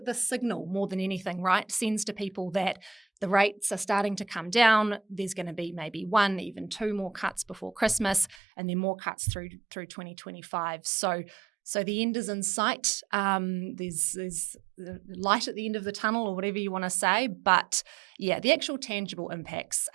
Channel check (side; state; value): left; drops out; at 8.3 s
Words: signal more than anything, right, sends to people that the rates are starting to come down. There's going to be maybe 1, even 2 more cuts before Christmas, and then more cuts through 2025. So So the end is in sight. There's light at the end of the tunnel, or whatever you want to say. But yeah, the actual tangible impacts